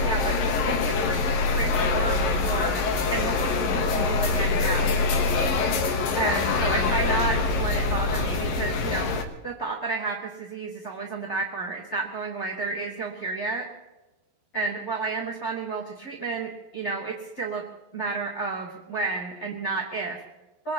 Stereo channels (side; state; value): right; late; 11 ms